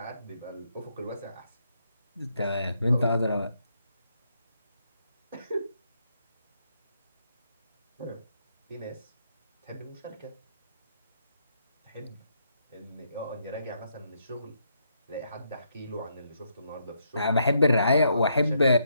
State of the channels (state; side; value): inverted; both; correlation -0.76